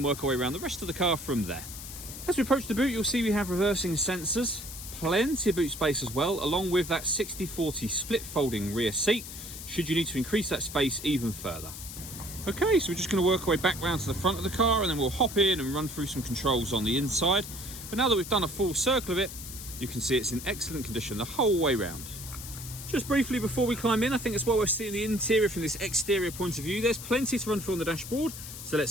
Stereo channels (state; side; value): noise; left; hiss, 11 dB below the sound